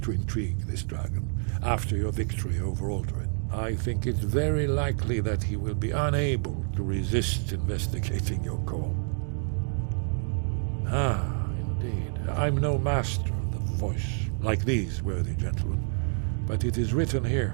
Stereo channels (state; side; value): silent; left; 59 dB below the other